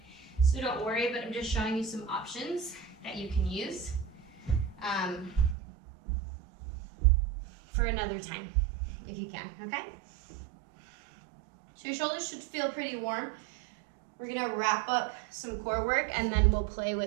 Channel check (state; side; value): drops out; left; at 5.6 s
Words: so don't worry, but I'm just showing you some options that you can use for another time, if you can, okay? So your shoulders should feel pretty warm. We're gonna wrap up some core work, and then we'll play